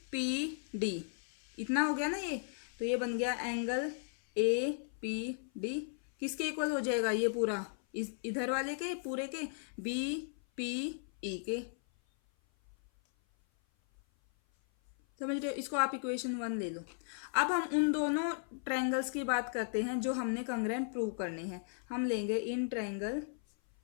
पी डी इतना हो गया ना ये, तो ये बन गया एंगल ए पी डी। किसके इक्वल हो जाएगा ये पूरा, इधर वाले के पूरे के, बी पी ई के। समझ रहे हो, इसको आप इक्वेशन 1 ले लो। अब हम उन दोनों ट्रायंगल्स की बात करते हैं जो हमने कंग्रेंट प्रूव करने हैं। हम लेंगे in triangle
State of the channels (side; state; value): right; silent; 54 dB below the other